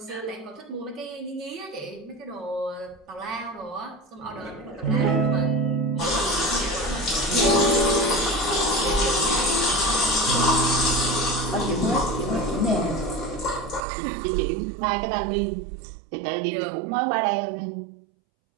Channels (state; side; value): drops out; left; at 13.9 s